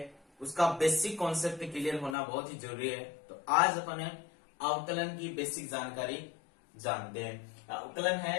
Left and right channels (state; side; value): drops out; right; at 2.1 s